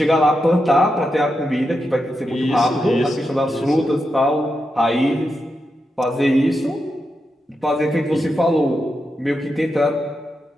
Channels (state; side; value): normal; both; correlation 0.86